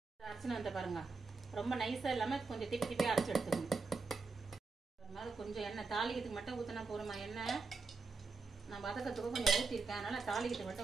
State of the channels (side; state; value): left; quieter; 4.3 dB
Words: அரைச்சுன்னு வந்து பாருங்க, ரொம்ப நைஸா இல்லாம கொஞ்சம் திப்பியா அரைச்சி எடுத்துக்கணும். கொஞ்சம் எண்ணெய் தாளிக்கிறதுக்கு மட்டும் ஊத்தினா போறோமா. எண்ணெய் நான் வதக்கத்துக்கு கொஞ்சம் ஊத்திருக்கேன், அதனால தாளிக்கிறதுக்கு